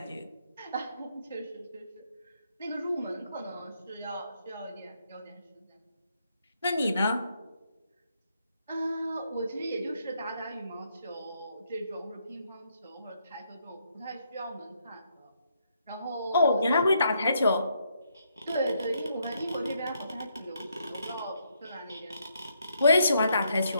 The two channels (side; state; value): both; inverted; correlation -0.75